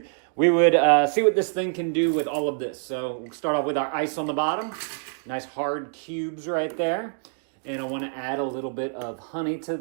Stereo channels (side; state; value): left; silent; digital silence